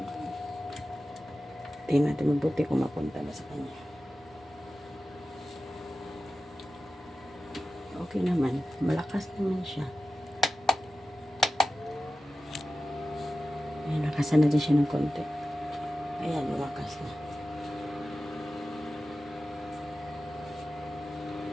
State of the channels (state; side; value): normal; both; correlation 0.94